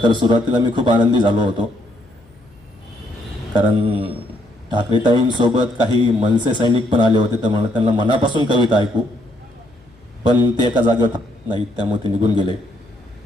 तर सुरुवातीला मी खूप आनंदी झालो होतो, कारण ठाकरेताईंसोबत काही मनसे सैनिक पण आले होते, तर मला त्यांना मनापासून कविता ऐकू, पण ते एका जागेवर नाहीत, त्यामुळे ते निघून गेले.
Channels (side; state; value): left; noise; hum, 30 dB below the sound